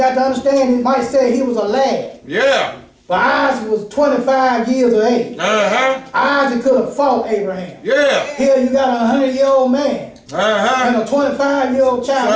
to understand, it might say he was a lad, Yeah. but Isaac was 25 years of age. Uh-huh. Isaac could have fought Abraham. Yeah. Here you got a 100-year-old man Uh-huh. and a 25-year-old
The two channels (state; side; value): identical; both; correlation 1.00